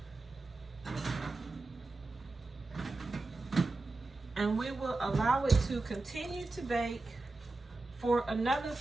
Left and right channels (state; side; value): quieter; left; 3.3 dB